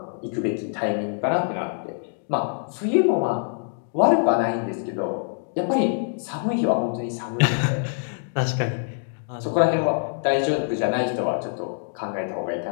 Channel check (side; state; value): right; silent; digital silence